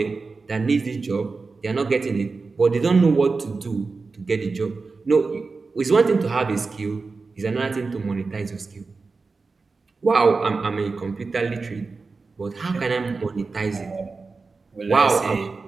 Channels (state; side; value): quieter; left; 4.2 dB